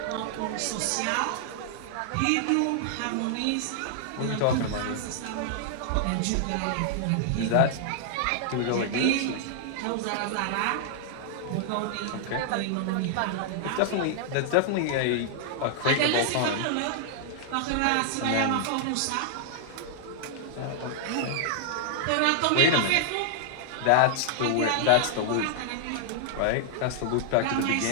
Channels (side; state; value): both; different; correlation -0.01